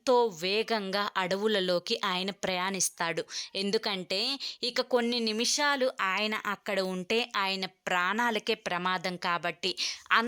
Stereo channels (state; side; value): identical; both; correlation 1.00